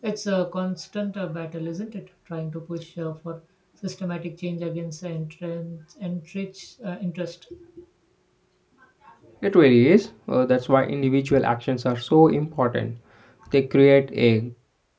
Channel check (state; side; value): identical; both; correlation 1.00